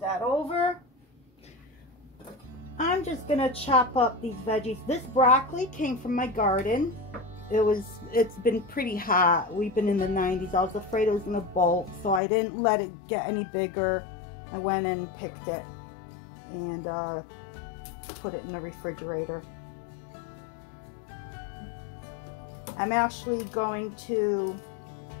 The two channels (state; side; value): drops out; right; at 12.2 s